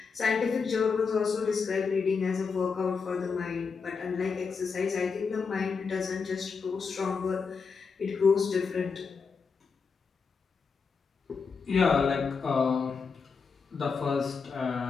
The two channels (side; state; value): right; quieter; 5.3 dB